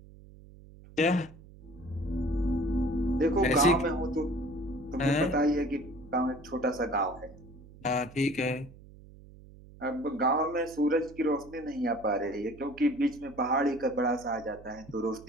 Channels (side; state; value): right; noise; hum, 20 dB below the sound